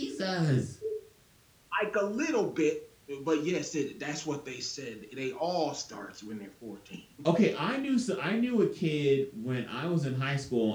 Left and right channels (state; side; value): identical; both; correlation 1.00